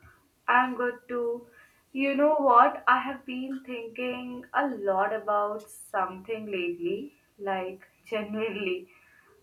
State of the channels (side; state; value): both; identical; correlation 1.00